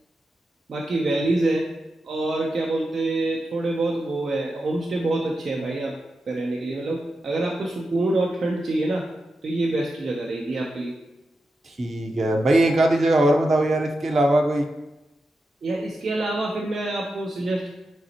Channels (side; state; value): both; normal; correlation 0.89